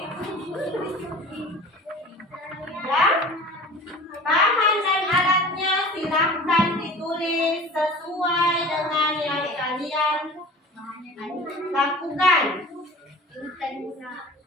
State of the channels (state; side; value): normal; both; correlation 0.40